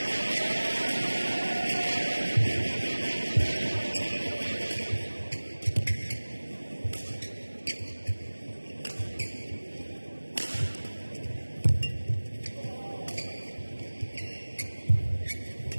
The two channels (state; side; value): inverted; both; correlation -1.00